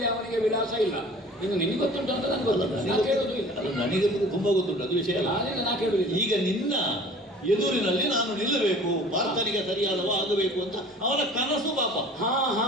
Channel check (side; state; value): both; normal; correlation 0.46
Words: ಅವನಿಗೆ ವಿಳಾಸ ಇಲ್ಲ. ಇನ್ನು ನಿನಗೆ ಗೊತ್ತುಂಟು ಅಂತ ನನಗೆ ಗೊತ್ತಿಲ್ಲ, ನಾ ಕೇಳೋದು ಇಲ್ಲ. ಅದು ನನಗೆ ತುಂಬಾ ಗೊತ್ತುಂಟು, ಅದು ವಿಷಯ ಅಲ್ಲ. ನಾ ಕೇಳುದಿಲ್ಲ. ಈಗ ನಿನ್ನ ಎದುರಿನಲ್ಲಿ ನಾನು ನಿಲ್ಲಬೇಕು, ಪಾರ್ಥನಿಗೆ ಸರಿಯಾದವ ಆಗಬೇಕು ಅಂತ ಅವನ ಕನಸು ಪಾಪ. ಹಾ ಹಾ